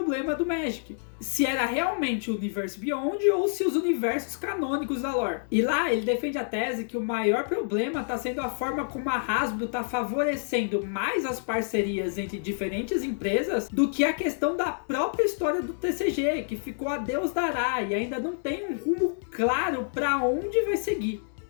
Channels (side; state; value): right; silent; digital silence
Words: do Magic. Se era realmente o Universe Beyond ou se os universos canônicos da lore. E lá ele defende a tese que o maior problema está sendo a forma como a Hasbro está favorecendo mais as parcerias entre diferentes empresas do que a questão da própria história do TCG, que ficou a Deus dará e ainda não tem um rumo claro para onde vai seguir.